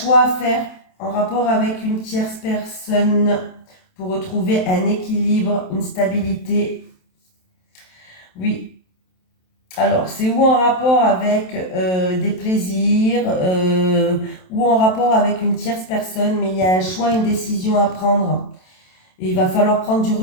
à faire en rapport avec une tierce personne pour retrouver un équilibre, une stabilité. Oui. Alors, c'est ou en rapport avec des plaisirs, ou en rapport avec une tierce personne, mais il y a un choix, une décision à prendre. Et il va falloir prendre du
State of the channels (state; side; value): late; right; 27 ms